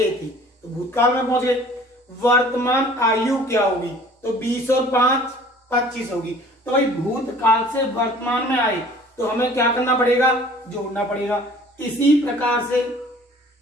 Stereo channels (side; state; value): both; normal; correlation 0.50